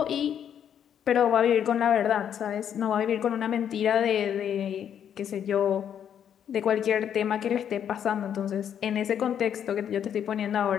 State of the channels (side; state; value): right; quieter; 9.0 dB